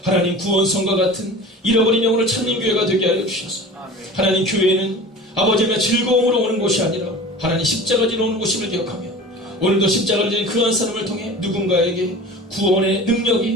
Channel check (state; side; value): normal; both; correlation 0.37